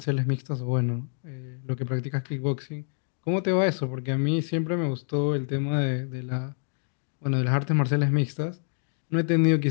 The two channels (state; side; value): silent; right; digital silence